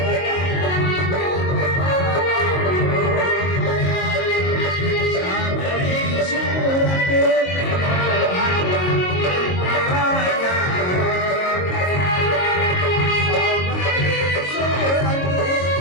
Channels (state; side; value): late; right; 22 ms